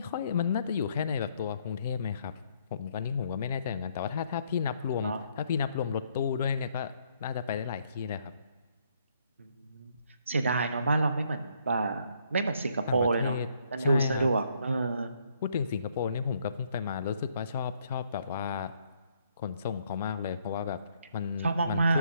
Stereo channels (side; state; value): both; inverted; correlation -0.69